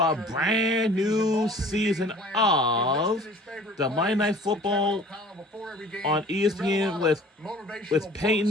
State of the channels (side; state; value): both; normal; correlation 0.48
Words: brand new season of the Monday Night Football on ESPN with